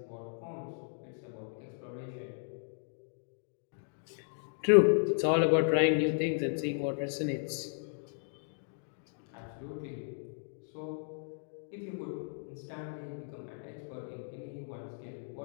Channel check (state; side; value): silent; right; digital silence